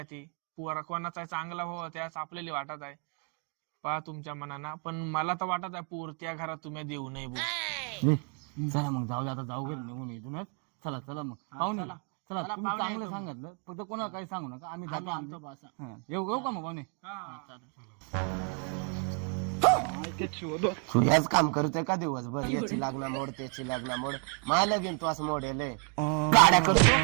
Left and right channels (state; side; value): quieter; left; 37.9 dB